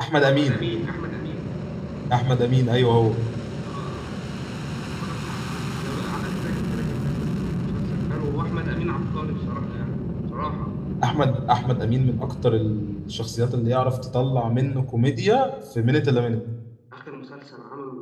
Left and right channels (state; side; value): identical; both; correlation 1.00